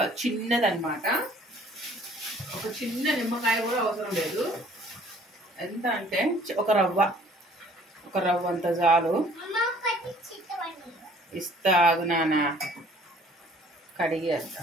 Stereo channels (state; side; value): normal; both; correlation 0.55